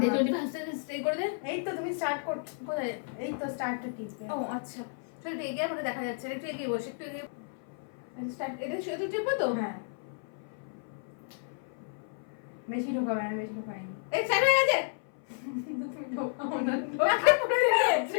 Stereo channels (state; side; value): silent; right; 57 dB below the other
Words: 25 সেকেন্ড স্টে করে দে। এই তো তুমি স্টার্ট কর। কোথায়? এই তো স্টার্টটা টিপবে। ও আচ্ছা চল একটু এগিয়ে আমাকে দেখা যাচ্ছে না, একটু এগিয়ে বসে, একটু এগিয়ে স্টার্ট। এটা শুধু টিপবো তো? হ্যাঁ বেশি ঢোকাবে না, বেশি ঢোকায়নি। এই স্টার্ট হয়ে গেছে। কিন্তু তুমি ঢোকাও না, নাকে পড়ে